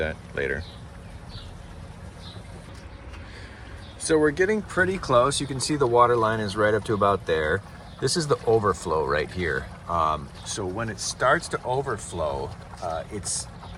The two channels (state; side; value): identical; both; correlation 1.00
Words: later. So we're getting pretty close. You can see the water line is right up to about there. This is the overflow right here. So when it starts to overflow, it's